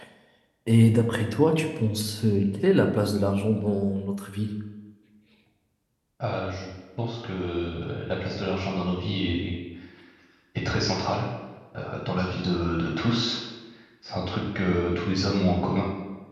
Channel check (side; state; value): both; identical; correlation 1.00